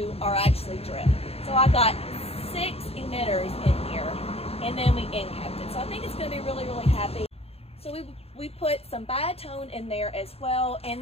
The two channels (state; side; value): late; right; 0.29 ms